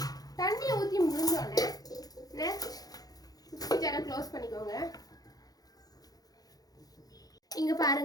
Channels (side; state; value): right; late; 0.18 ms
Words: தண்ணியை ஊத்தி முடிஞ்சோடனே நெக்ஸ்ட் மிக்ஸி ஜாரை க்ளோஸ் பண்ணிக்கோங்க. இங்க